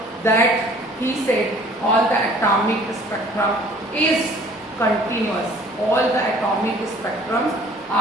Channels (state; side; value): normal; both; correlation 0.52